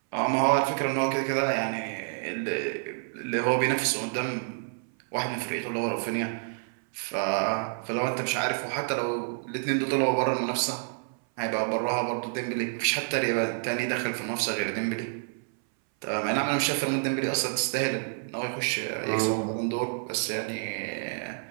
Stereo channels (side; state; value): left; silent; 59 dB below the other